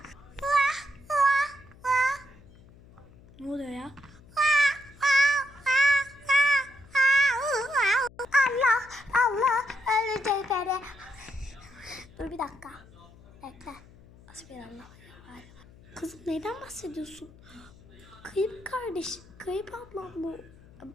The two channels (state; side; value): noise; left; hum, 23 dB below the sound